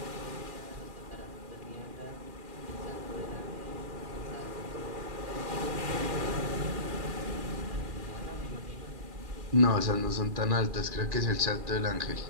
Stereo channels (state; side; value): late; left; 2.4 ms